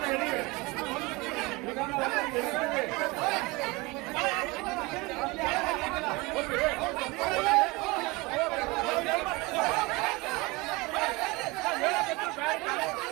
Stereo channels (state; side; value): quieter; left; 23.5 dB